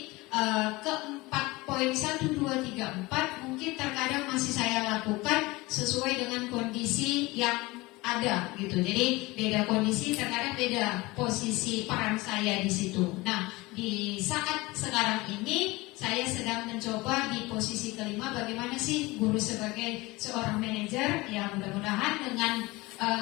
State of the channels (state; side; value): quieter; right; 21.9 dB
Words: keempat poin 1, 2, 3, 4 mungkin terkadang masih saya lakukan sesuai dengan kondisi yang ada gitu. Jadi beda kondisi, terkadang beda posisi peran saya di situ. Nah, di saat sekarang ini saya sedang mencoba di posisi kelima, bagaimana sih guru sebagai seorang manajer. Ya mudah-mudahan dengan